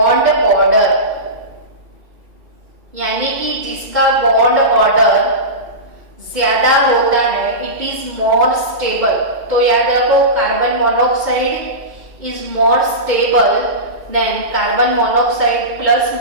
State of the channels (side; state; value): left; late; 2.2 ms